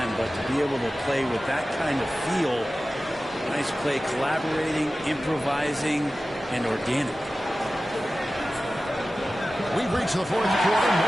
but to be able to play with that kind of feel, nice play, collaborating, improvising, and organic. We've reached the fourth quarter, and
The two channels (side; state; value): both; normal; correlation 0.95